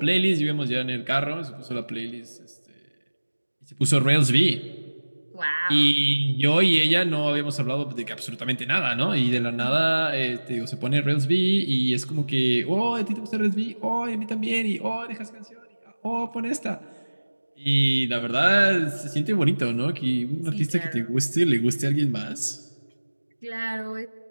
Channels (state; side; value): inverted; both; correlation -1.00